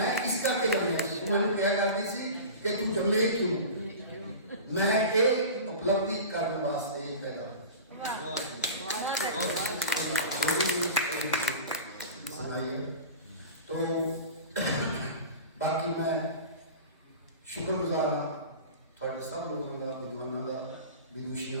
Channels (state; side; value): inverted; both; correlation -0.34